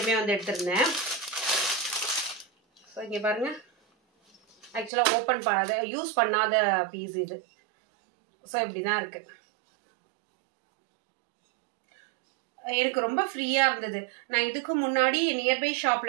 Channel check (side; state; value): left; drops out; at 4.9 s